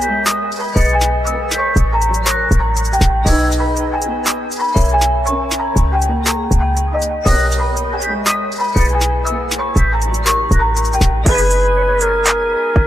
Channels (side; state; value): both; normal; correlation 0.89